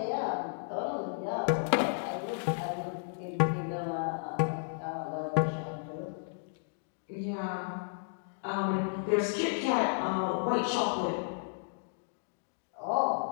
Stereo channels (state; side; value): silent; right; digital silence